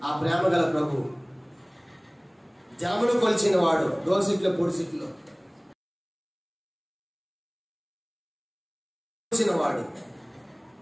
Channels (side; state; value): both; identical; correlation 1.00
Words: ఆ ప్రేమ గల ప్రభు జలములు కొలిచిన వాడు, దోసిట్లో పొడిసిట్లో వాడు,